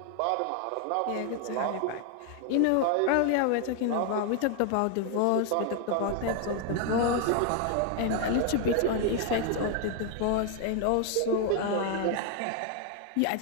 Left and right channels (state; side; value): different; both; correlation 0.00